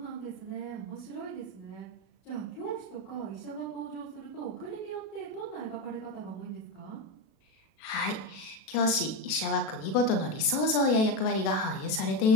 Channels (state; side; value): late; right; 37 ms